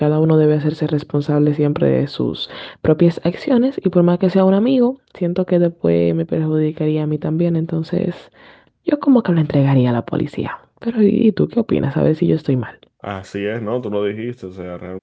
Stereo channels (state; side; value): identical; both; correlation 1.00